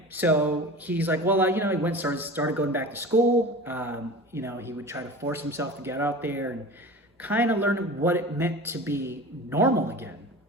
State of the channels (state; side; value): normal; both; correlation 0.36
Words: So he's like, well, you know, he started going back to school. You know, he would try to force himself to get out there and kind of learn what it meant to be normal again.